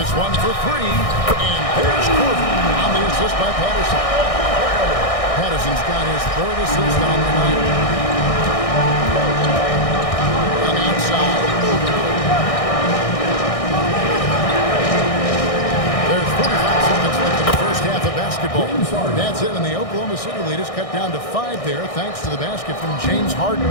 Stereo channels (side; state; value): right; late; 1.6 ms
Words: one for 3. And there's Korver on the assist by Patterson. Patterson's got his 3rd assist on the night. And outside. There's 45 seconds left in the first half of basketball. That's it, and the Oklahoma City lead is cut down to 5 there, thanks to the basket from James Harden.